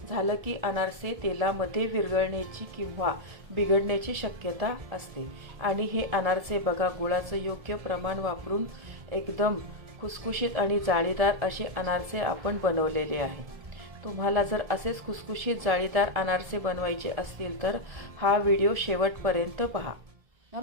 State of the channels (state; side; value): late; left; 1.7 ms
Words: झालं की अनारसे तेलामध्ये विरघळण्याची किंवा बिघडण्याची शक्यता असते। आणि हे अनारसे बघा गुळाचं योग्य प्रमाण वापरून एकदम खुसखुशीत आणि जाळीदार असे अनारसे आपण बनवलेले आहे। तुम्हाला जर असेच खुसखुशीत जाळीदार अनारसे बनवायचे असतील तर हा व्हिडिओ शेवटपर्यंत पहा।